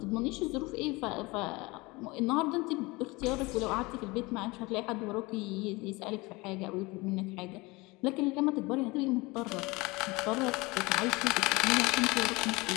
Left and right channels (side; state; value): right; quieter; 23.6 dB